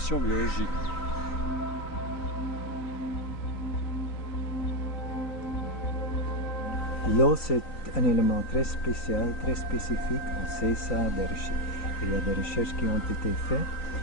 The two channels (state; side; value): late; right; 3.9 ms